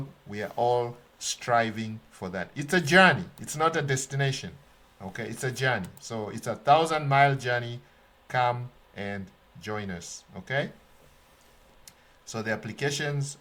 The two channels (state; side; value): identical; both; correlation 1.00